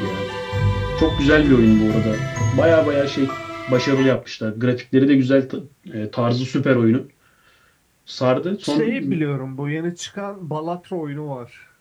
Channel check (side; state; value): both; identical; correlation 1.00